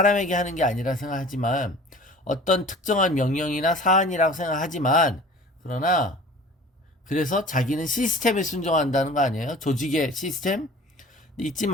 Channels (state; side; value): normal; both; correlation 0.44